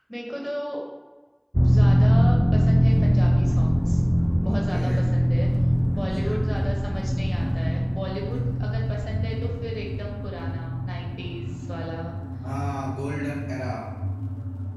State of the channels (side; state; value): both; identical; correlation 1.00